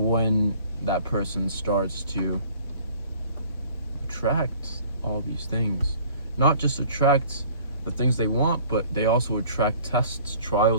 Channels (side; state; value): both; inverted; correlation -0.52